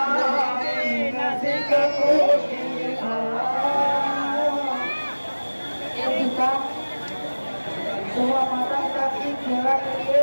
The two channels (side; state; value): both; inverted; correlation -1.00